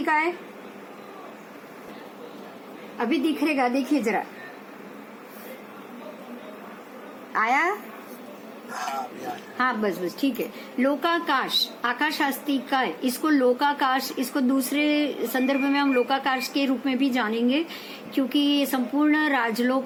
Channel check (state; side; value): identical; both; correlation 1.00